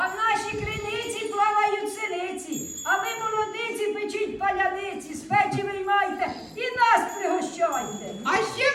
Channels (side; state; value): both; identical; correlation 1.00